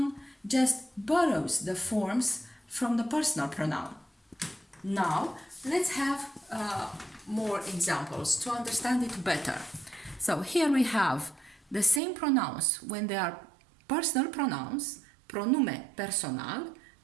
just borrows the forms from the personal pronoun. Now, let's have more examples to understand it better. So here we have the same pronouns when they are personal pronouns, pronume personal,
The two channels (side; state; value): left; drops out; at 12.0 s